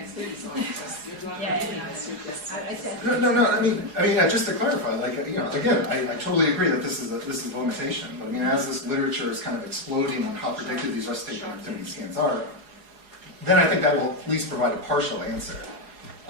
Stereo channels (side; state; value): left; late; 4.8 ms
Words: No. I mean, just to clarify, like, again, I totally agree that this is a limitation. But I mean, as this literature is kind of exploding on how predictive these rest state connectivity scans are, then I think that will at least provide a partial answer.